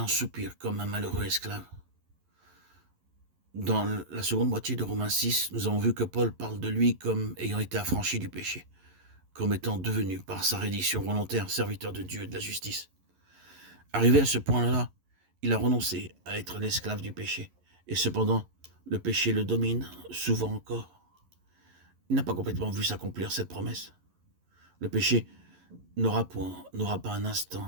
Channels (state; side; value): late; left; 11 ms